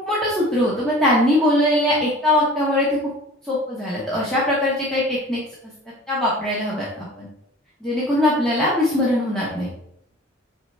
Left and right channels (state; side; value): normal; both; correlation 0.43